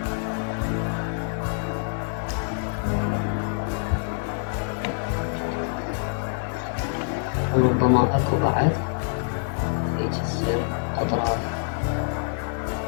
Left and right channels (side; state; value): right; silent; 61 dB below the other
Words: وربما أكو بعد هيك تصير أطراف.